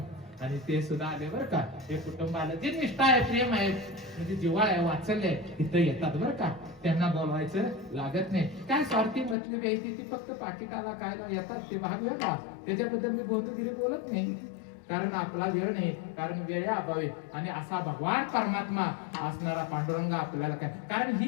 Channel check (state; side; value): drops out; right; at 9.3 s